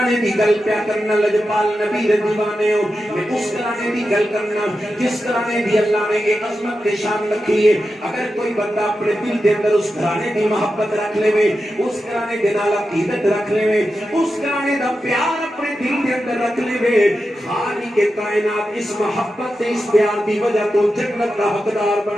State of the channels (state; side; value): normal; both; correlation 0.90